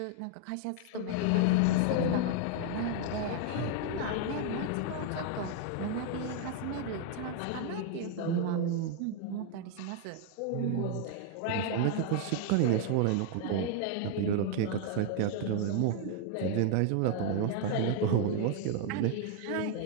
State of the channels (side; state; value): both; different; correlation 0.00